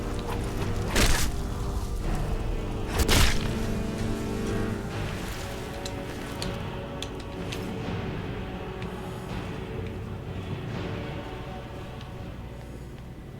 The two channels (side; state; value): both; identical; correlation 1.00